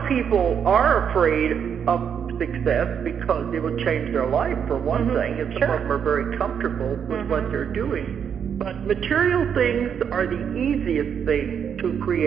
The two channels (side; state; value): left; quieter; 7.8 dB